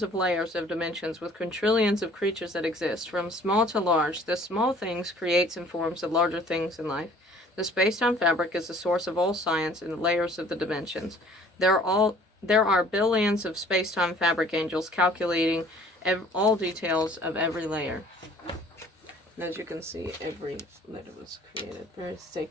of layers of dimensions with quintillions of creatures that exist, from small to large. The small things creates and forms the larger things in life. The space-time fabric is the source of all science in the layers of the dimensions. There are billions of space-time fabric angels calculating all details of every layer. And as you can see, every letter was created very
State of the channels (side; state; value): both; normal; correlation 0.54